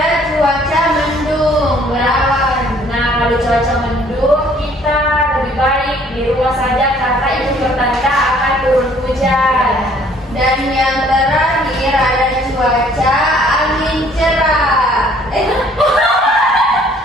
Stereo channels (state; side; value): normal; both; correlation 0.59